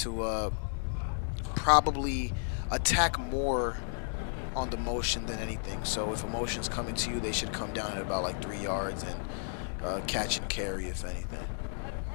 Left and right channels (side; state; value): right; silent; digital silence